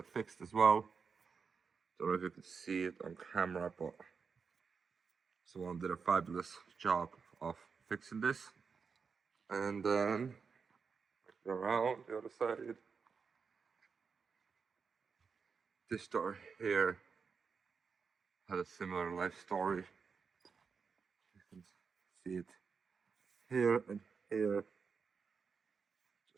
fixed as well. Don't know if you can see it on camera, but someone did a fabulous job of fixing this. And then go around the other side. This door here had a similar life story. You can see it here and here.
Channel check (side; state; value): left; quieter; 5.6 dB